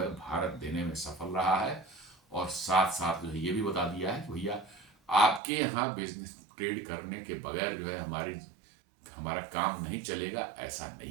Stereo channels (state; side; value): drops out; left; at 5.4 s